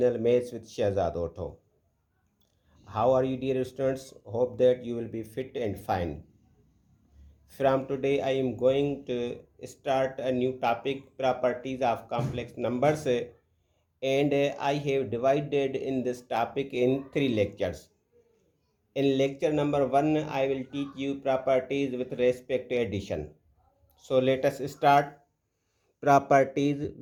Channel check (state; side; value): identical; both; correlation 1.00